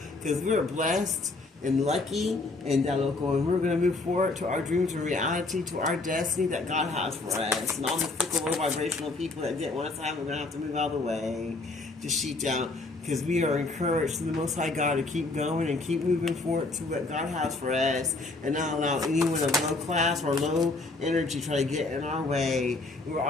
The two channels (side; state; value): right; quieter; 3.3 dB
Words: because we're blessed and lucky and that local, and we're going to move forward to our dreams and reality, to our destiny that God has for us. And all the fickle, low vibrational people that didn't want us to have, we're going to have to move out of the way to sheet down, because we are encouraged to the Most High God to keep going and keep moving forward to what God has for us and not allow anyone of low class or low energy try to get in our way. We're